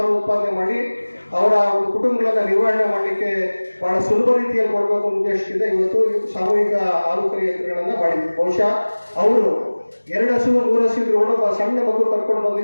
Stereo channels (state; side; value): inverted; both; correlation -1.00